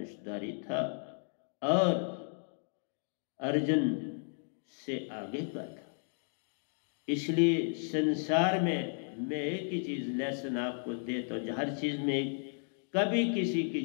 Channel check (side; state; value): right; silent; 55 dB below the other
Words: था और अर्जुन से आगे का था। इसलिए संसार में मैं एक ही चीज लेसन आपको देता हूं, हर चीज में कभी किसी की